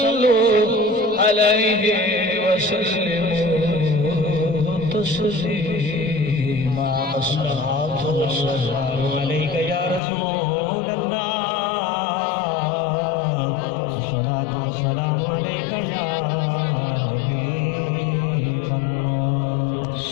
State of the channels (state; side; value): drops out; right; at 10.0 s